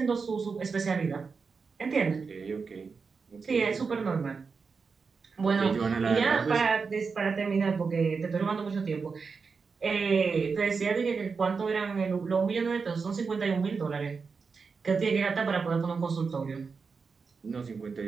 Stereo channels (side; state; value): left; quieter; 5.1 dB